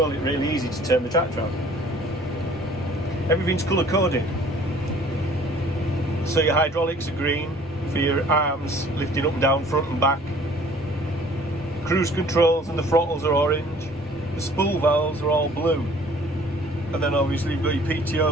it really easy to turn the tractor on. Everything's colour coded. So your hydraulics are green for your arms lifting up and down, front and back. Cruise controls and the throttles are orange. The spool valves are all blue. And then obviously you've got your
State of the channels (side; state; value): both; normal; correlation 0.53